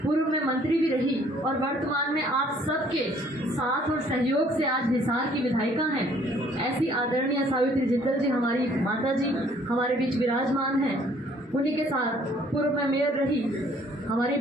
पूर्व में मंत्री भी रही और वर्तमान में आप सबके साथ और सहयोग से आज हिसार की विधायिका हैं। ऐसी आदरणीय सावित्री जिंदल जी हमारी माता जी हमारे बीच विराजमान हैं। उन्हीं के साथ पूर्व में मेयर रही हमारी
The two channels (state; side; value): normal; both; correlation 0.60